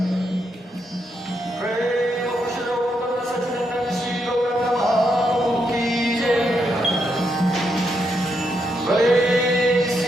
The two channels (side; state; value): both; normal; correlation 0.80